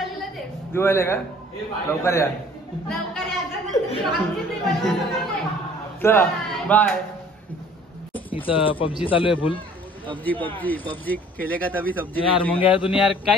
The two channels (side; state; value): both; normal; correlation 0.53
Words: दिवाळीला का लवकर या चला बाय. इथं पबजी चालू आहे फुल पबजी खेलेगा तभी सब्जी यार मग यार तुम्ही यार